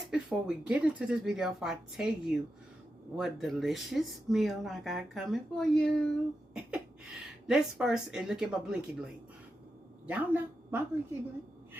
before we get into this video, if I tell you what delicious meal I got coming for you. Let's first look at my blinky blink. Y'all know my blinky blink.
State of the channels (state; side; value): normal; both; correlation 0.89